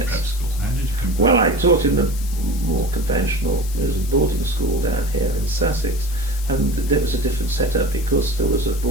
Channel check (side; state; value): left; noise; hiss, 15 dB below the sound